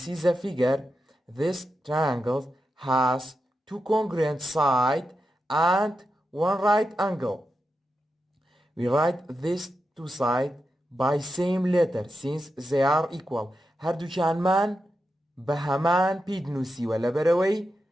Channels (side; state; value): both; normal; correlation 0.88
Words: see the figure, this triangle has two congruent sides and one right angle. We write these two sides by same letter since they are equal. هەردووکیانمان بە هەمان پێی دنووسیوە لەبەرەوەی